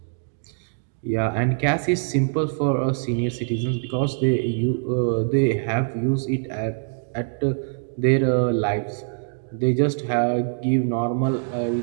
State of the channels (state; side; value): silent; left; digital silence